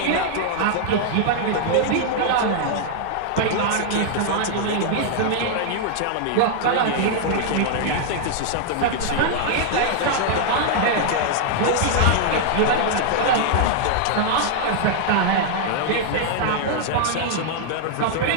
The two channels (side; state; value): both; different; correlation -0.01